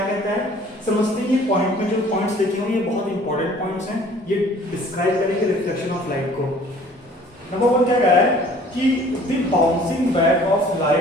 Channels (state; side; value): normal; both; correlation 0.52